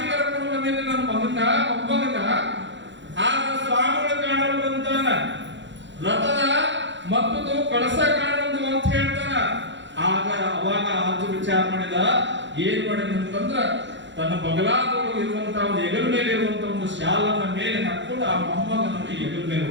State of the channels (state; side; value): late; left; 0.53 ms